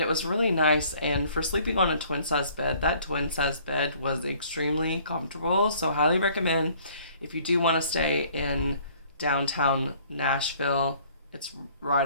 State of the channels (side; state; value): both; inverted; correlation -0.57